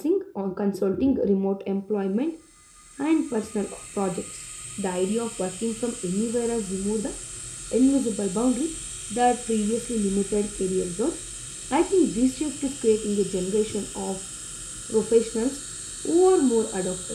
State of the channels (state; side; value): identical; both; correlation 1.00